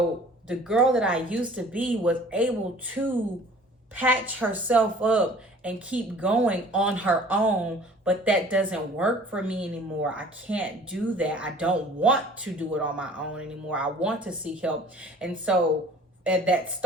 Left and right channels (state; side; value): normal; both; correlation 0.49